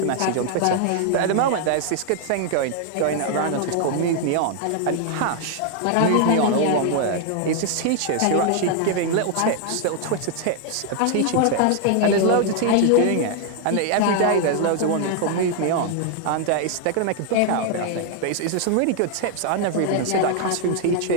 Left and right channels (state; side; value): different; both; correlation 0.00